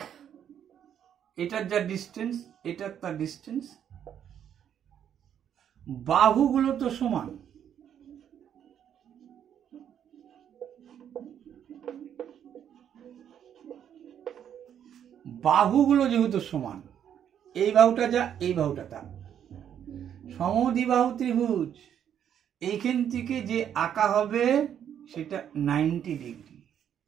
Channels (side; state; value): left; quieter; 9.3 dB